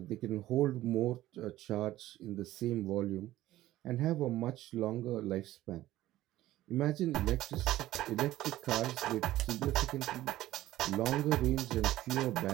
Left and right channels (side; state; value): left; quieter; 15.2 dB